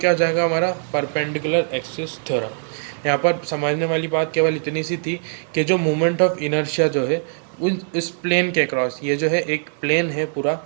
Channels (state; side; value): silent; left; 63 dB below the other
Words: हो जाएगा हमारा परपेंडिकुलर एक्सिस थ्योरम। यहाँ पर समझने वाली बात केवल इतनी सी थी कि जो मोमेंट ऑफ इनर्शिया जो है उन इस प्लेन के क्रॉस, ये जो है एक प्लेन है पूरा,